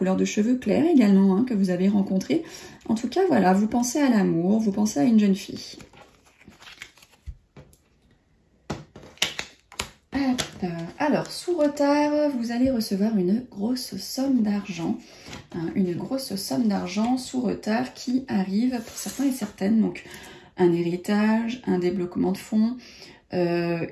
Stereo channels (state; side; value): identical; both; correlation 1.00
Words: de cheveux clairs également, hein, que vous avez rencontrée. En tout cas, voilà, vous pensez à l'amour, vous pensez à une jeune fille. Alors, sous retard, vous allez recevoir une grosse somme d'argent. Hein, une grosse somme d'argent sous retard qui arrive pour certains et certaines. Donc, un héritage, un débloquement de fonds,